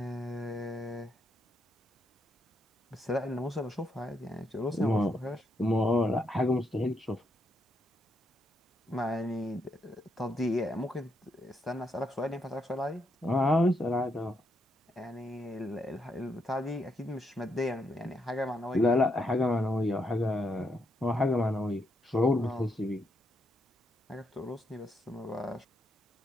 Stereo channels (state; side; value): normal; both; correlation 0.78